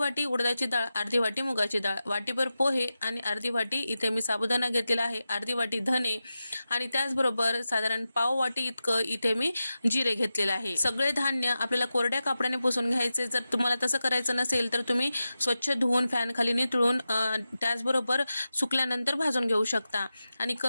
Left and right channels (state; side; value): inverted; both; correlation -0.92